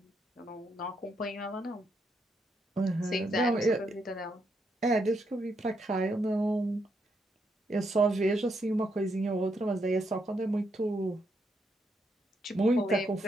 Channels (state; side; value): normal; both; correlation 0.78